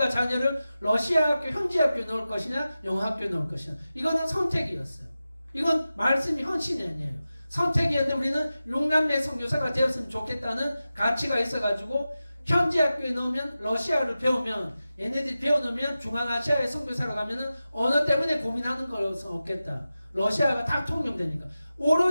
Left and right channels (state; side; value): inverted; both; correlation -0.94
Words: 자녀를 러시아 학교, 현지 학교 넣을 것이냐 영어 학교 넣을 것이냐 이거는 선택이었어요. 이건 말씀이 헌신이 아니에요. 선택이었는데 우리는 6남매 선교사가 되었으면 좋겠다는 가치가 있어가지고 현지 학교에 넣으면 러시아를 배우면 얘네들이 배워놓으면 중앙아시아의 선교사로 가면은 언어 때문에 고민하는 것은 없겠다. 러시아가 다 통용되니까